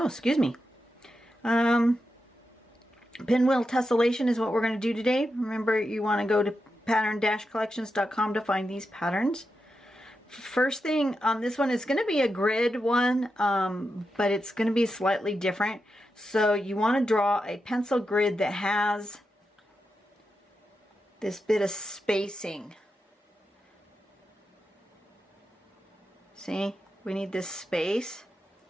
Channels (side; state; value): both; normal; correlation 0.88